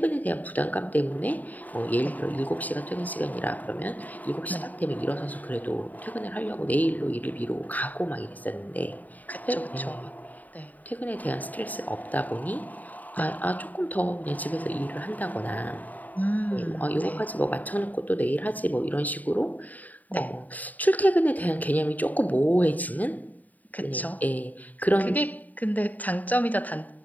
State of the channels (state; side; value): late; right; 0.079 ms